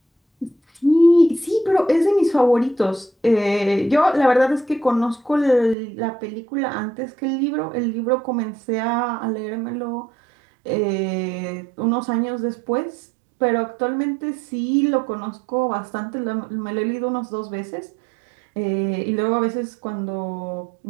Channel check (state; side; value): drops out; left; at 5.8 s